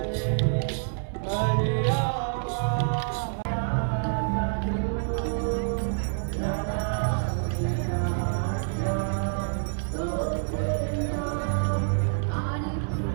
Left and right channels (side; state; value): left; silent; digital silence